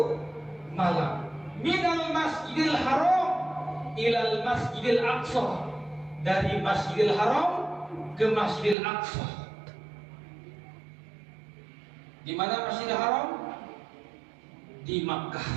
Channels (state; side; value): drops out; left; at 8.8 s